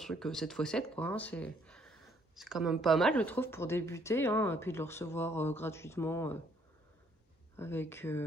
7 x 7 quoi. Hein, c'est quand même pas mal, je trouve, pour débuter. Hein, et puis de le recevoir gratuitement avec...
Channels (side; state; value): both; normal; correlation 0.66